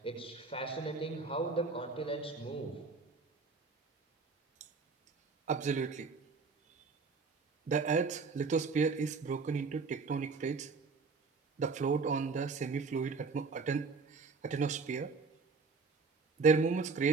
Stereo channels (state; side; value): quieter; left; 4.5 dB